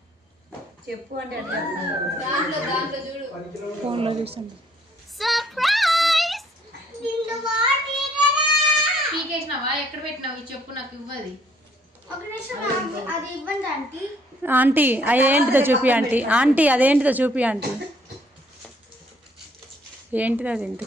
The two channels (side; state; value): both; normal; correlation 0.65